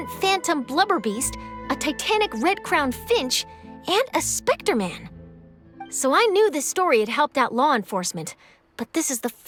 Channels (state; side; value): identical; both; correlation 1.00